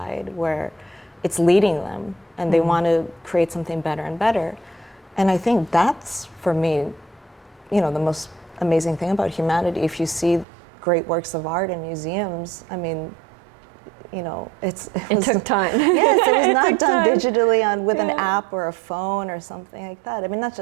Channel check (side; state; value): left; drops out; at 10.5 s